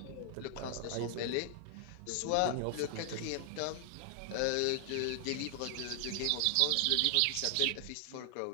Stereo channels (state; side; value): different; both; correlation 0.00